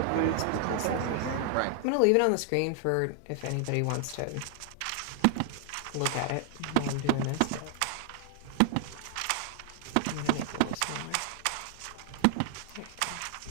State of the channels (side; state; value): both; different; correlation 0.00